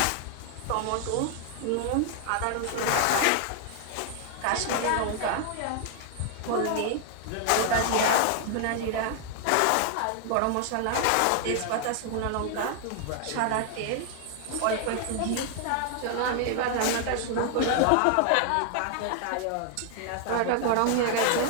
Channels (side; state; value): both; different; correlation 0.00